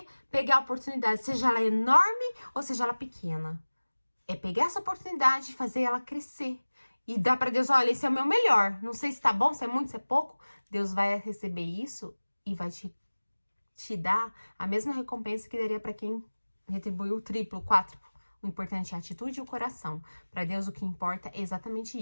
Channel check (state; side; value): inverted; both; correlation -1.00